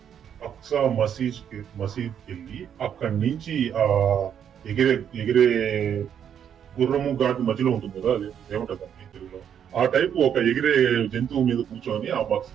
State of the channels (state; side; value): quieter; left; 8.7 dB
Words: అక్సా మసీద్ వెళ్ళి అక్కడి నుంచి ఆ ఎగిరే గుర్రము ఘాటు మధ్యలో ఉంటుంది కదా, అది ఏమంటుంది తెలుగులో, ఆ టైప్ ఒక ఎగిరే జంతువు మీద కూర్చొని